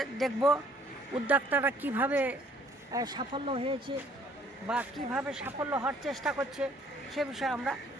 দেখব উদ্যোক্তারা কিভাবে সাফল্য হয়েছে বা কিভাবে সাফল্য হওয়ার চেষ্টা করছে, সে বিষয়ে আমরা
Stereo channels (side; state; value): both; normal; correlation 0.60